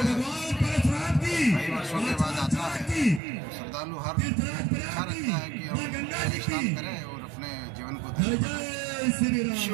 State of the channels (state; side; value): drops out; left; at 3.2 s